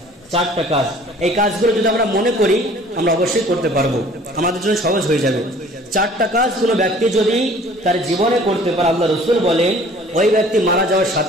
4টা কাজ। এই কাজগুলো যদি আমরা মনে করি আমরা অবশ্যই করতে পারবো, আমাদের জন্য সহজ হয়ে যাবে। 4টা কাজ কোন ব্যক্তি যদি তার জীবনে করতে পারে, আল্লাহ রাসূল বলেন ওই ব্যক্তি মারা যাওয়ার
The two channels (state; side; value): normal; both; correlation 0.51